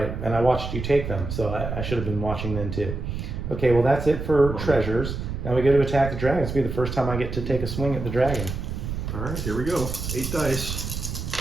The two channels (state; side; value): noise; right; rumble, 5 dB below the sound